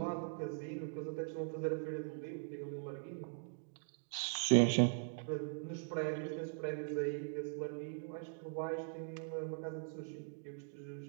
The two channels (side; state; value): left; silent; digital silence